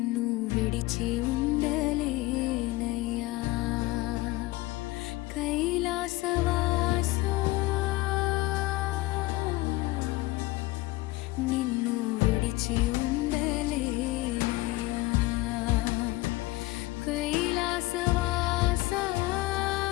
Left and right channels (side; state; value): right; quieter; 19.5 dB